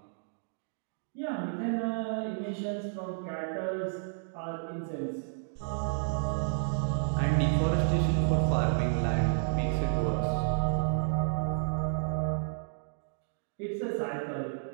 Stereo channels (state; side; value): silent; left; digital silence